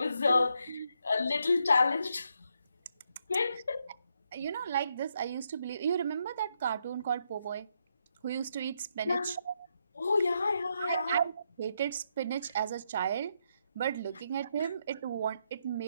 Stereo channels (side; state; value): both; inverted; correlation -0.78